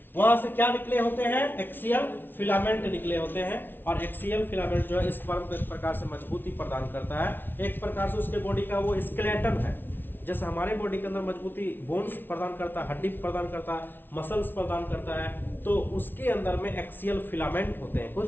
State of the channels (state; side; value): late; right; 0.098 ms